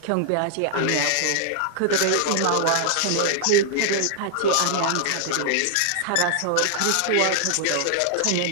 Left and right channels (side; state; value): both; different; correlation -0.01